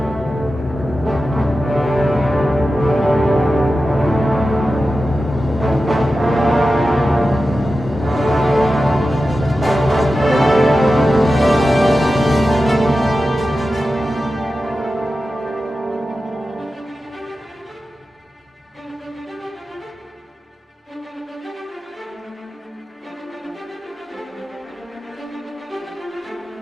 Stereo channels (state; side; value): normal; both; correlation 0.93